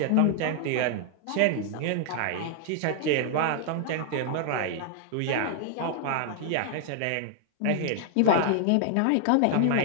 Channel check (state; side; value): different; both; correlation 0.00